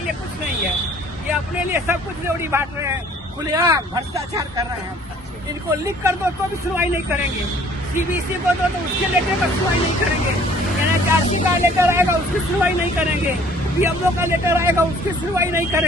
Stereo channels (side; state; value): both; normal; correlation 0.55